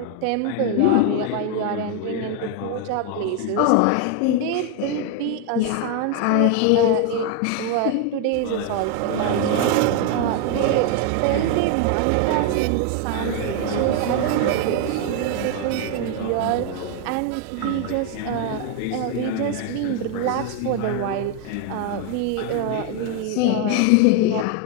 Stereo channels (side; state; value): both; different; correlation 0.01